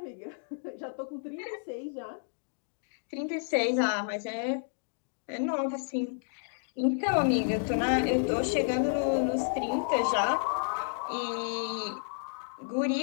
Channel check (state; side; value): silent; right; digital silence